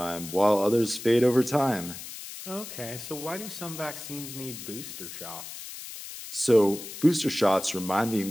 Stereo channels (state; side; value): noise; left; hiss, 11 dB below the sound